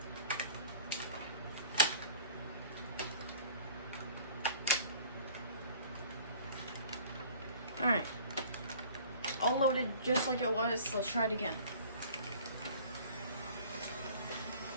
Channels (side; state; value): both; inverted; correlation -0.48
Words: Alright. All loaded just like it was. Let's try it again.